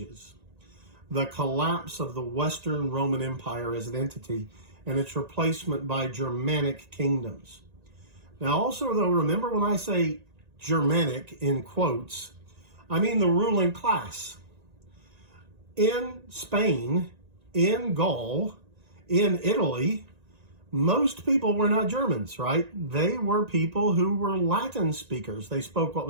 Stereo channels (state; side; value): late; left; 1.9 ms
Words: The collapse of the Western Roman Empire as an entity and its replacement by Germanic kingdoms. Now also, though, remember when I say Germanic in quotes, I mean the ruling class. In Spain, in Gaul, in Italy, most people were not Germans, right? They were people who were Latin speakers. They spoke what